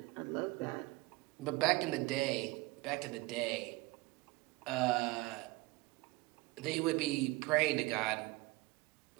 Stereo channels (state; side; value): quieter; left; 22.2 dB